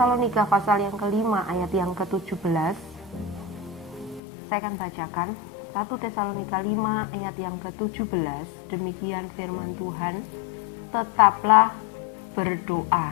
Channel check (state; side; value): drops out; right; at 4.2 s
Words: pasal yang kelima ayat yang ke-17, saya akan bacakan. 1 Tesalonika 5 ayat yang ke-17, demikian firman Tuhan, tetaplah